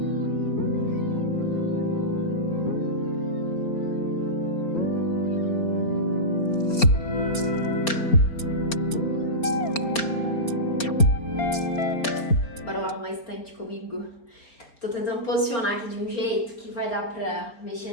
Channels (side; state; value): right; late; 4.4 ms